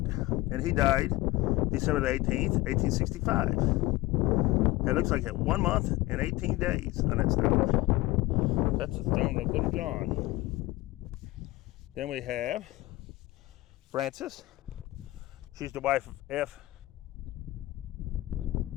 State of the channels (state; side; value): quieter; right; 19.1 dB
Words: and he died December the 18th, 1865. It looks like 1 month and 18 days on that stone. That's the stone of Little John. Then we have Frances. She's the wife of F.